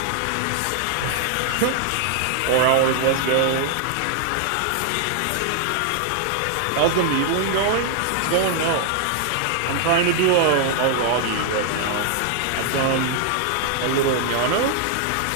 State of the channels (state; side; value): different; both; correlation 0.00